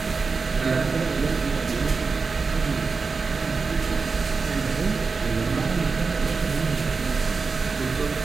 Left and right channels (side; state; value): left; quieter; 4.6 dB